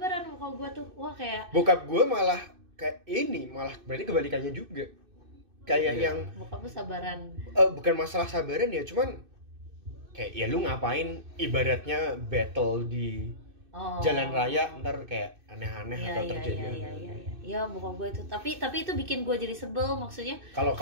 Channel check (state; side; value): late; left; 2.6 ms